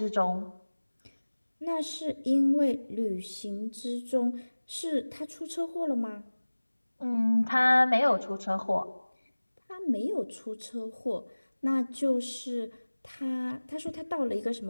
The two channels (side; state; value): both; inverted; correlation -1.00